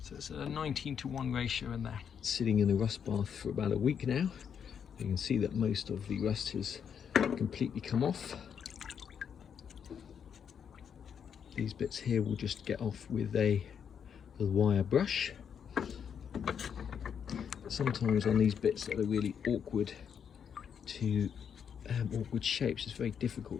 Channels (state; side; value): quieter; right; 7.6 dB